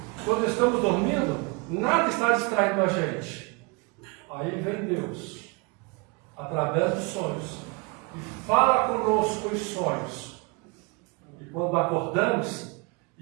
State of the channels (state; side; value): quieter; left; 28.5 dB